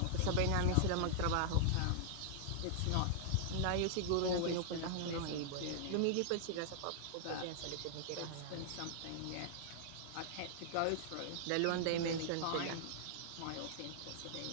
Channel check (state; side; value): different; both; correlation -0.01